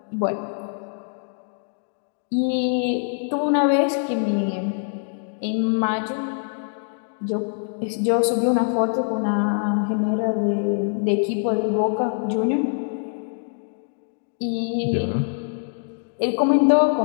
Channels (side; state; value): right; silent; digital silence